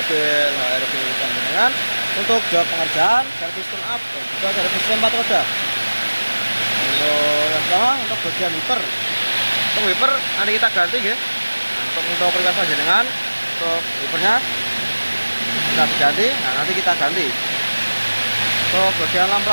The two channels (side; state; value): both; inverted; correlation -1.00